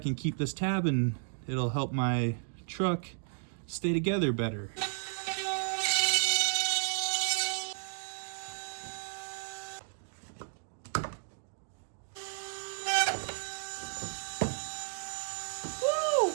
keep this tab and it'll help my truck stay together better.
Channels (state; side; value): silent; left; digital silence